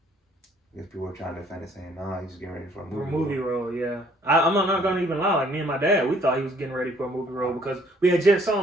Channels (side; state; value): both; normal; correlation 0.61